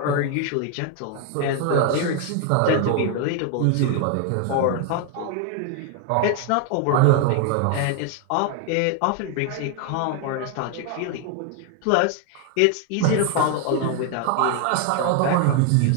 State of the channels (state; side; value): different; both; correlation 0.01